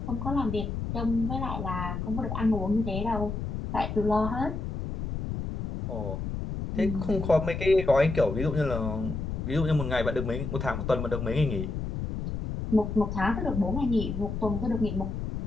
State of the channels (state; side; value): noise; left; rumble, 4 dB below the sound